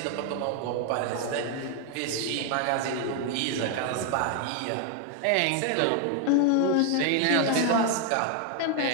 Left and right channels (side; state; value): both; different; correlation 0.00